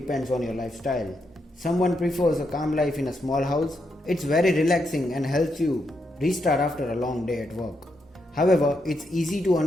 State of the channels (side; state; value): both; normal; correlation 0.81